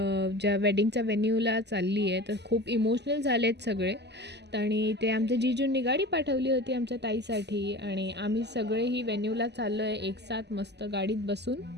ज्या वेडिंगच्या वेन्यूला चालली आहे. तर खूप इमोशनल झाले आहेत सगळे. आणि ते आमच्या जीजूंनी गाडी पाठवली होती आमच्या ताईसाठी आणि आम्ही सगळेही वेन्यूला चाललो आहे एक साथ मस्त गाडीत बसून.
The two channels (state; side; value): late; left; 0.50 ms